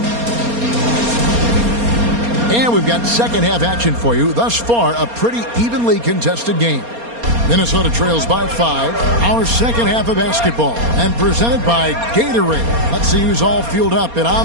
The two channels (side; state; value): left; late; 4.3 ms